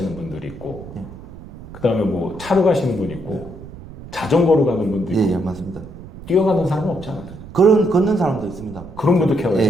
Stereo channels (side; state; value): right; noise; rumble, 15 dB below the sound